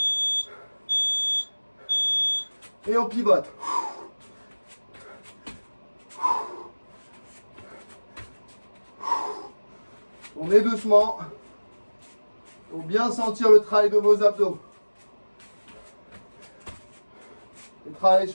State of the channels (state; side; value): inverted; both; correlation -1.00